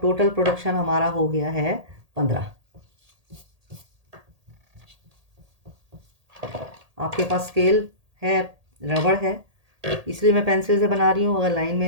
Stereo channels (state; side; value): late; left; 1.8 ms